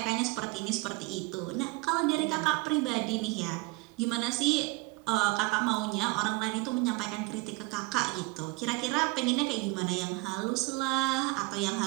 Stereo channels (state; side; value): quieter; left; 25.4 dB